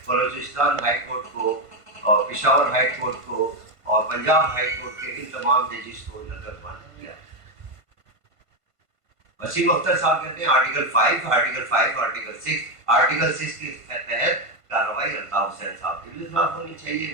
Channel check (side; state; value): left; late; 1.5 ms